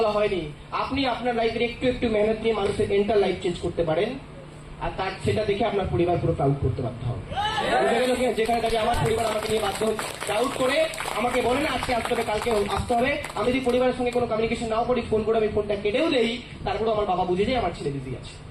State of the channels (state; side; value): identical; both; correlation 1.00